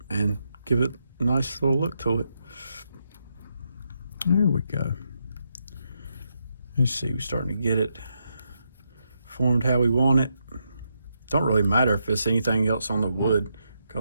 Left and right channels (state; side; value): inverted; both; correlation -0.81